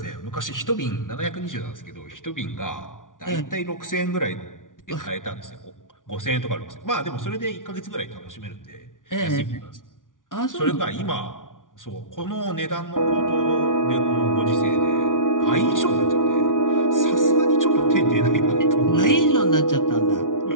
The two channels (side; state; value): right; late; 0.88 ms